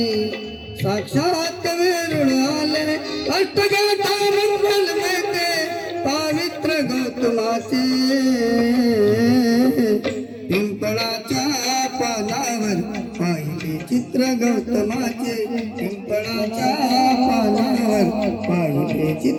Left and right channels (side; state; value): both; identical; correlation 1.00